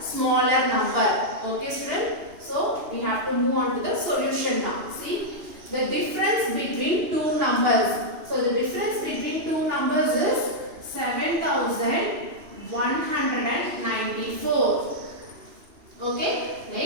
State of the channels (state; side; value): late; left; 2.8 ms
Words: smaller number. Okay, student. So we have to move on to the solution now. See, the difference between two numbers. So the difference between two numbers is 7,194. Okay.